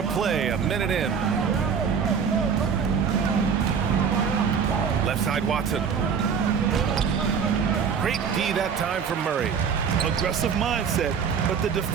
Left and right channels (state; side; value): quieter; left; 6.7 dB